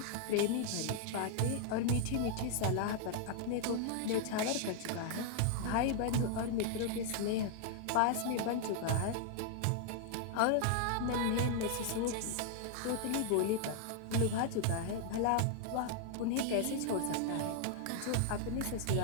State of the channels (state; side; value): different; both; correlation 0.00